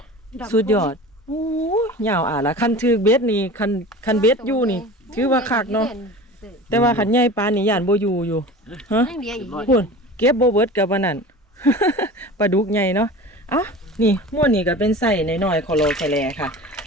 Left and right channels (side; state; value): both; normal; correlation 0.37